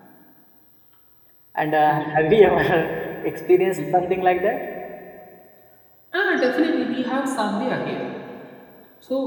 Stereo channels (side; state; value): both; identical; correlation 1.00